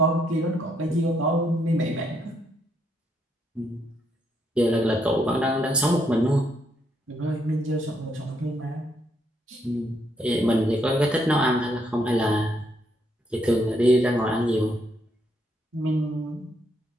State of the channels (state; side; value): normal; both; correlation 0.74